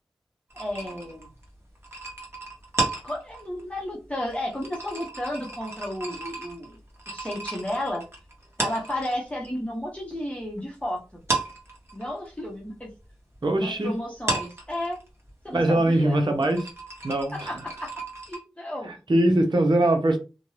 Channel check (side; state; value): both; normal; correlation 0.83